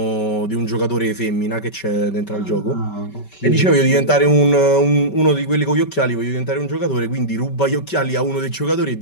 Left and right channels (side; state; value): right; late; 5.2 ms